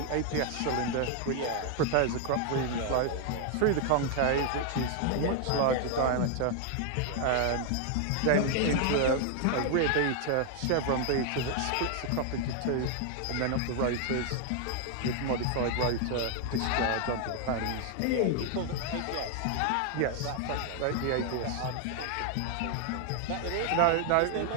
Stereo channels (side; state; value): both; different; correlation 0.00